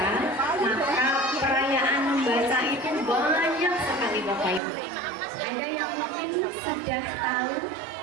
maka perayaan membaca itu banyak sekali Bapak Ibu. Ada yang mungkin sudah tahu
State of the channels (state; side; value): drops out; left; at 4.6 s